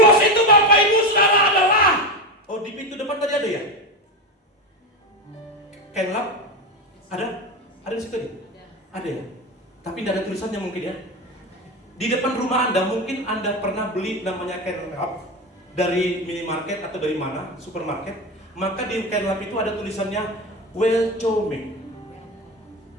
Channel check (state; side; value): normal; both; correlation 0.18